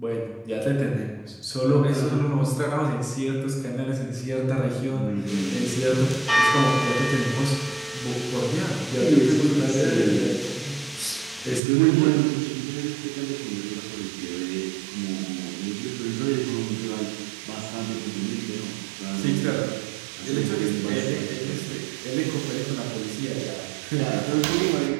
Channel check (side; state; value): left; drops out; at 11.6 s